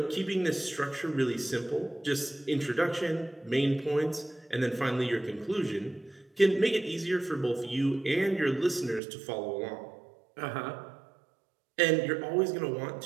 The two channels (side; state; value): left; drops out; at 9.0 s